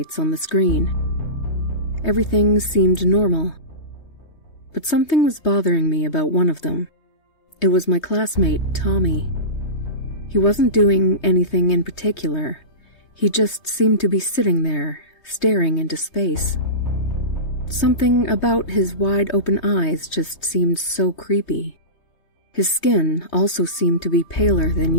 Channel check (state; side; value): late; right; 3.2 ms